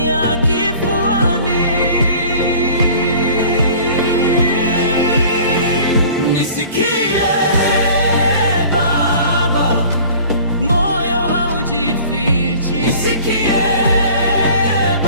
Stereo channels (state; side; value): inverted; both; correlation -0.46